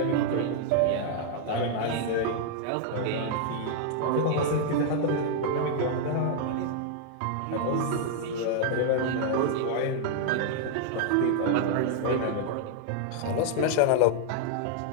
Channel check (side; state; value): both; different; correlation 0.00